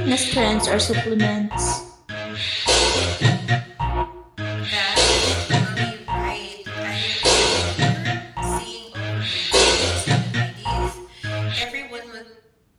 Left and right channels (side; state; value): both; identical; correlation 1.00